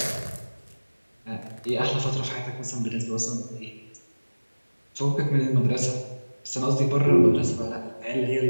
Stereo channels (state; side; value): inverted; both; correlation -1.00